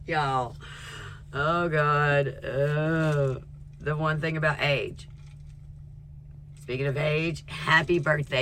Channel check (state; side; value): identical; both; correlation 1.00